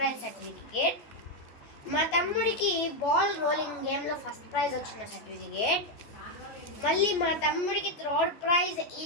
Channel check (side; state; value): right; late; 14 ms